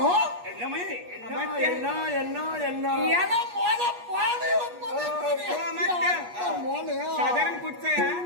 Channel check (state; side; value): late; left; 8.3 ms